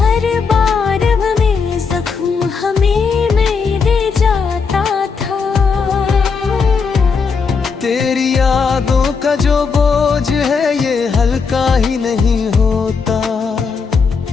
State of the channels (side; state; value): right; quieter; 5.3 dB